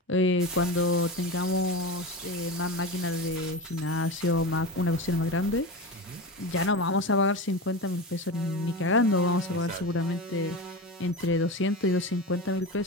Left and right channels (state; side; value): normal; both; correlation 0.25